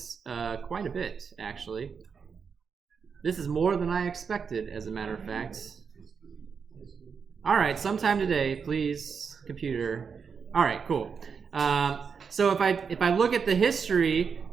quite a bit, actually. This is more than I expected, as a matter of fact. All right, sometime today, please, computer. All right, cool. So if I look at the history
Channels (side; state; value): left; quieter; 6.1 dB